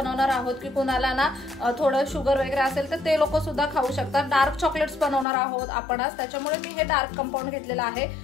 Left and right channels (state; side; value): drops out; right; at 5.2 s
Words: आहोत की कोणाला ना थोडं शुगर वगैरे असेल तर ते लोक सुद्धा खाऊ शकतात। डार्क चॉकलेट्स बनवणार आहोत आपण आज, त्याच्यामुळे मी हे डार्क कंपाऊंड घेतलेलं आहे।